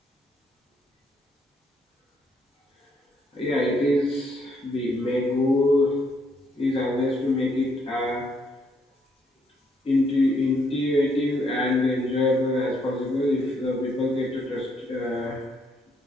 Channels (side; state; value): both; normal; correlation 0.72